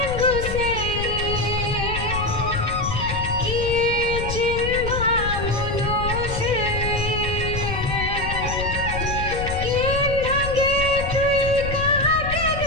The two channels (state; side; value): noise; left; rumble, 5 dB below the sound